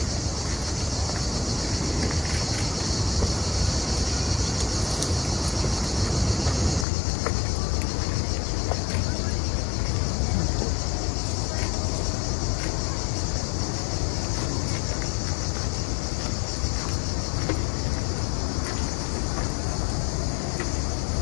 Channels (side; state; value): right; drops out; at 6.9 s